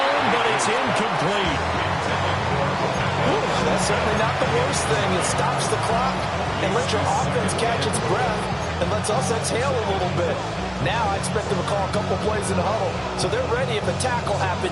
but it's incomplete. Ooh, that's certainly not the worst thing. It stops the clock and lets your offense catch its breath and lets us exhale a little bit. Now I expect them to call a couple plays in the huddle, so they're ready if a tackle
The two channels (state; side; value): identical; both; correlation 1.00